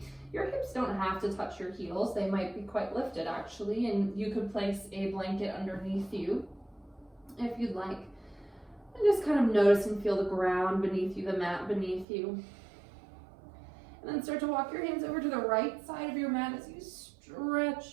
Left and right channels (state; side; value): drops out; left; at 12.1 s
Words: Your hips don't have to touch your heels. They might be quite lifted actually, and you could place a blanket underneath you if you'd like. And just kind of notice and feel the ground beneath you, the mat beneath you. And then start to walk your hands over to the right side of your mat as you